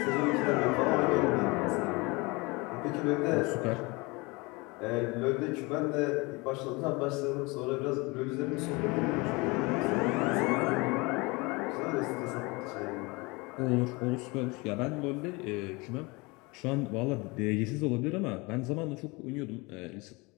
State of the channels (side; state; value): right; quieter; 25.8 dB